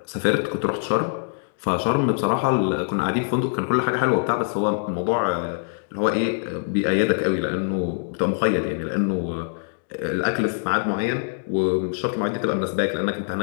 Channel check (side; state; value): right; silent; digital silence